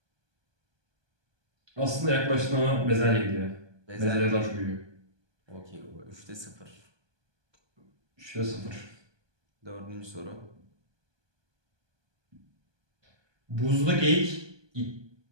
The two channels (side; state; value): left; late; 1.2 ms